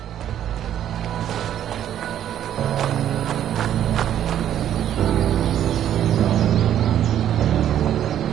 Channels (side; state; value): left; quieter; 10.8 dB